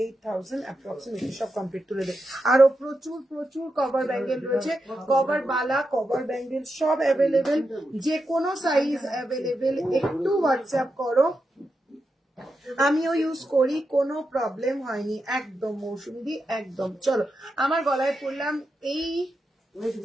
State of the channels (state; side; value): normal; both; correlation 0.87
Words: approximately. সব কমপ্লিট তুলে দেয়। আরো প্রচুর প্রচুর কভার ব্যাঙ্গেল রয়েছে, কভার বালা কভার ব্যাঙ্গেল সব অ্যাভেলেবেল, যে কোনো সাইজ অ্যাভেলেবেল। একটু হোয়াটসঅ্যাপ করো, আমিও ইউজ করি, কোনো প্রবলেম হয়নি, একদম মৌসুমি একদম। চলো আমার গলায় পড়লাম এই